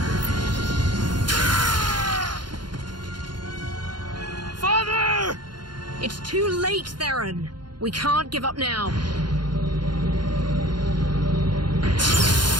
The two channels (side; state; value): left; late; 0.71 ms